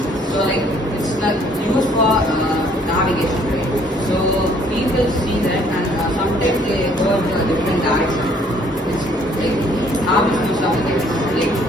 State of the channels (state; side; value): normal; both; correlation 0.61